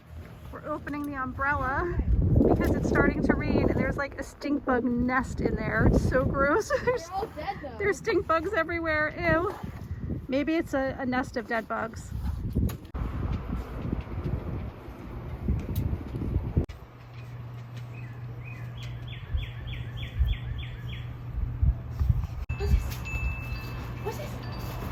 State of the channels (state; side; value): identical; both; correlation 1.00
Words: We're opening the umbrella because it's starting to rain and there's like a stink bug nest in there. It's so gross. They're all dead though. There's stink bugs everywhere. Ew. Maybe it's a nest of dead bugs. What's this? What's this?